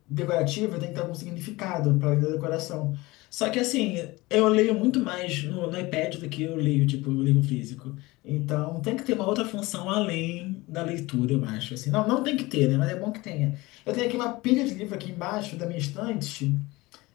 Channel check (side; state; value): right; quieter; 21.2 dB